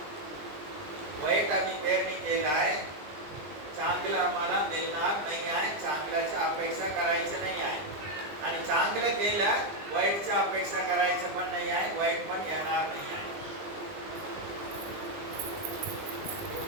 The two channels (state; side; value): late; left; 20 ms